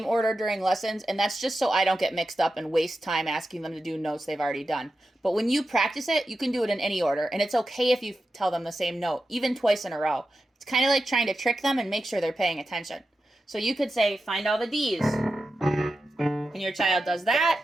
order during lessons, and that's just so I don't get mixed up and waste time asking them to do notes they've already done. But when you practice it, you can do it in any order, and it's okay if you tell them the same note, even twice in a row. It's kind of like trying to trick them and make sure they're paying attention. So you could say, find all the D's, and your child does that,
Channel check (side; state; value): both; normal; correlation 0.91